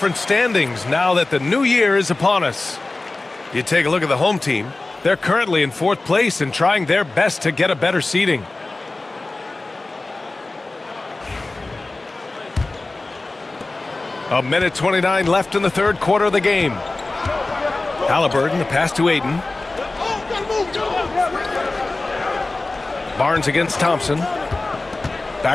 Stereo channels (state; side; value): quieter; right; 3.2 dB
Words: standings now that the new year is upon us. You take a look at the home team. They're currently in 4th place and trying their best to get a better seeding. A minute 29 left in the 3rd quarter of the game. Halliburton, the pass to Ayton. Barnes against Thompson.